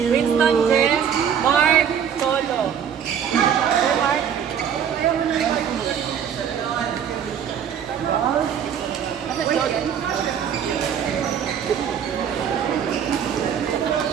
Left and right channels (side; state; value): left; quieter; 8.3 dB